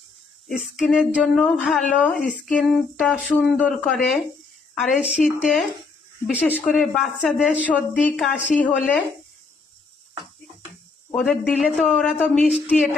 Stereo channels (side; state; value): right; quieter; 4.2 dB